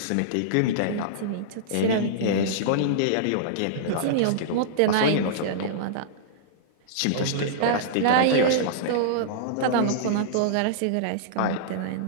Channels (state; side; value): different; both; correlation -0.02